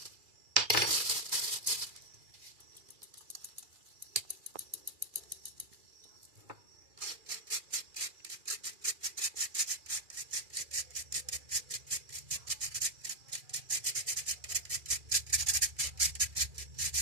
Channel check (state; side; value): late; left; 2.4 ms